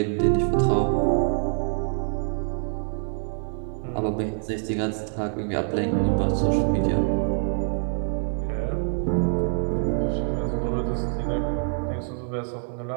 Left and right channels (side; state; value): left; silent; 57 dB below the other